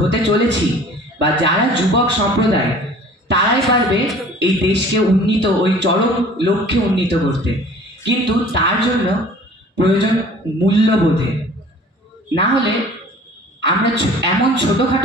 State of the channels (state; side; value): normal; both; correlation 0.48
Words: চলেছি বা যারা যুবক সম্প্রদায়, তারাই পারবে এই দেশকে উন্নীত, ওই চরম লক্ষ্যে উন্নীত করতে। কিন্তু তার জন্য প্রয়োজন মূল্যবোধে। না হলে আমরা এমন